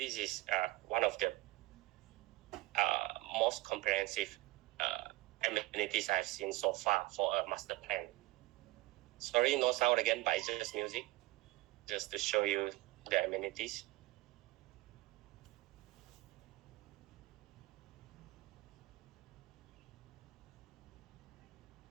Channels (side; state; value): left; quieter; 19.2 dB